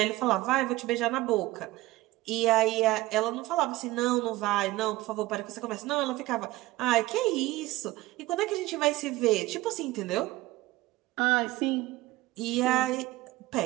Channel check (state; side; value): quieter; left; 17.9 dB